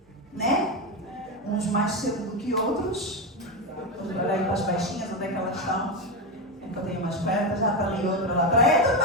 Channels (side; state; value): both; normal; correlation 0.12